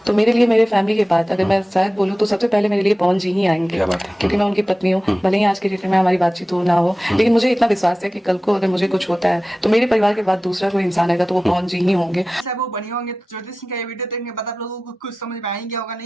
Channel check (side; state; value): both; normal; correlation 0.96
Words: तो मेरे लिए मेरे फैमिली के बाद अगर मैं शायद बोलूँ तो सबसे पहले मेरे लिए पवन जी ही आएंगे, क्योंकि मैं उनकी पत्नी हूँ। भले ही आज के डेट में हमारी बातचीत हो ना हो, लेकिन मुझे इतना विश्वास है कि कल को अगर मुझे कुछ होता है तो मेरे परिवार के बाद दूसरा कोई इंसान आएगा तो वो पवन जी ही होंगे। सब वो बने होंगे। तो ज्योति सिंह का ये वीडियो देखने के बाद आप लोगों को कुछ समझ में आएंगे होगा,